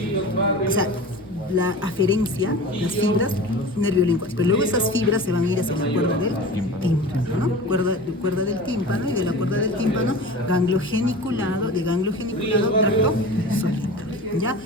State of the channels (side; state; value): both; normal; correlation 0.35